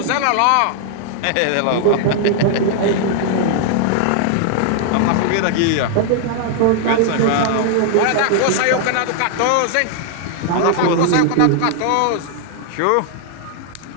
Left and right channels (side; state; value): both; different; correlation 0.00